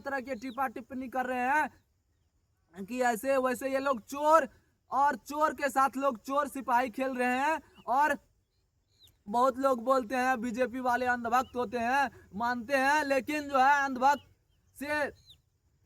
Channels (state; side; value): identical; both; correlation 1.00